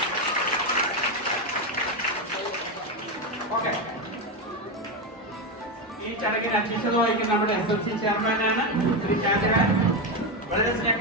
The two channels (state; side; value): normal; both; correlation 0.11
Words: ഓക്കെ, ഈ ചടങ്ങിൽ അധ്യക്ഷത വഹിക്കുന്ന നമ്മുടെ SMC ചെയർമാനാണ് ശ്രീ ചാന്ദ്രൻ. വളരെ